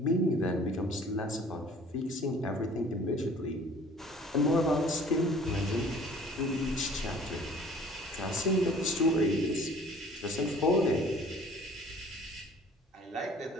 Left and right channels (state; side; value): normal; both; correlation 0.51